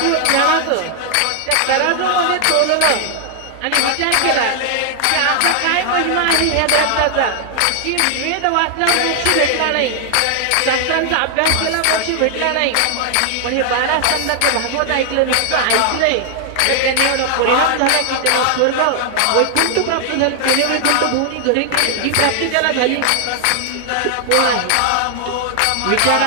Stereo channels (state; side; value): different; both; correlation 0.00